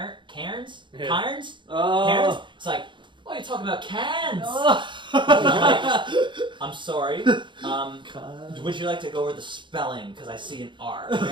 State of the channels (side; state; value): left; late; 0.23 ms